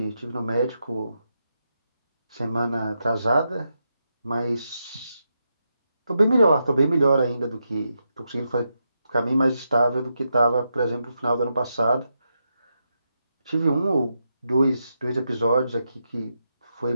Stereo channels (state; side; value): inverted; both; correlation -0.85